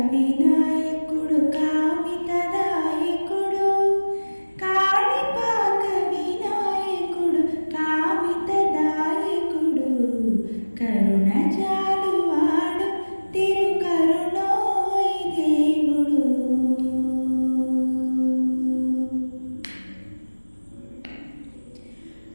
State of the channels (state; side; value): inverted; both; correlation -1.00